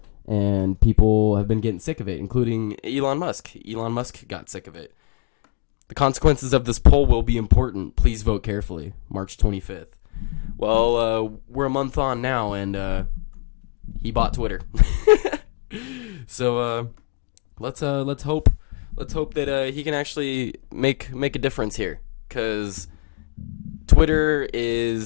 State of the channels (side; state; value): right; quieter; 29.7 dB